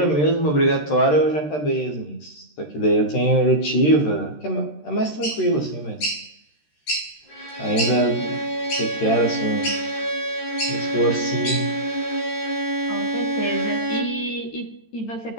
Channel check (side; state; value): right; late; 13 ms